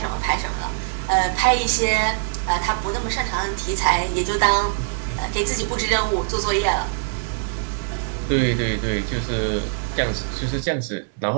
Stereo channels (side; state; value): left; silent; digital silence